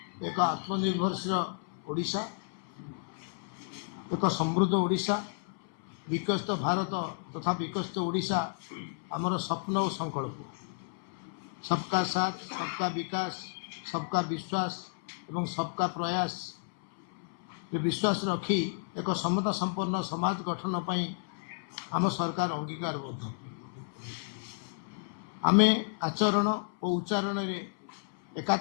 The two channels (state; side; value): silent; right; 56 dB below the other